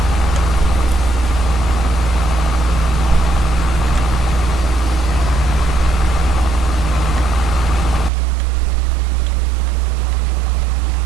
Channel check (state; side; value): drops out; left; at 8.1 s